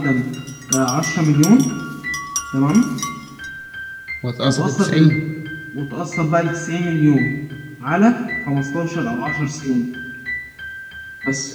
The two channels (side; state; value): both; identical; correlation 1.00